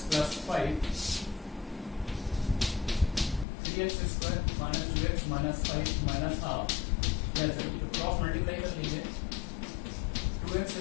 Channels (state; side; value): drops out; right; at 3.5 s